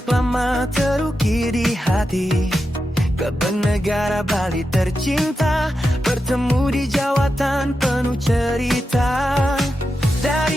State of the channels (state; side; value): normal; both; correlation 0.89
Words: lama terukir di hati. Kebenegara Bali tercinta, bertemu di jawatan penuh cerita.